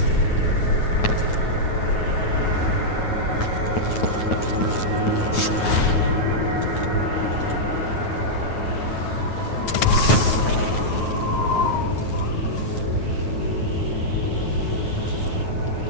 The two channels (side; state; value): right; late; 9.3 ms